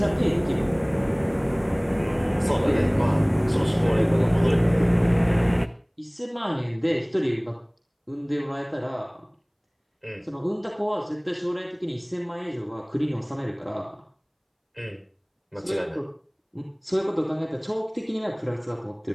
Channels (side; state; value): both; identical; correlation 1.00